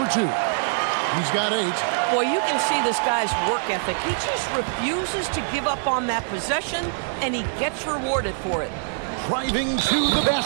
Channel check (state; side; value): silent; left; 63 dB below the other